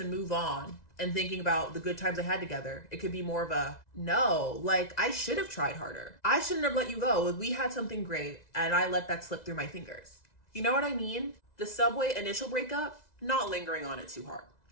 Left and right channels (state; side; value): late; right; 2.0 ms